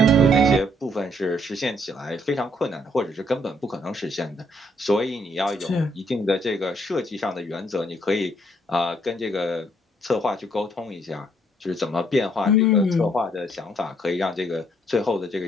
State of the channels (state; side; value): normal; both; correlation 0.68